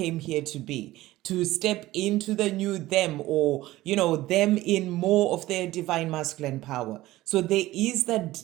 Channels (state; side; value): quieter; left; 16.9 dB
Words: here to be, to step into the new them, or them in more of their divine masculine power. So there is